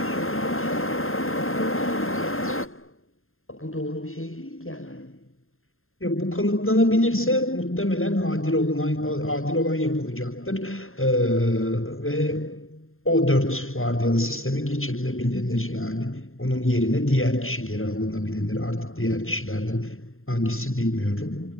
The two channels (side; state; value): right; late; 0.61 ms